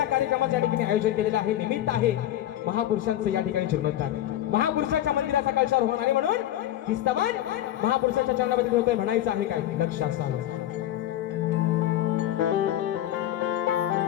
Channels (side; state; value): right; quieter; 12.8 dB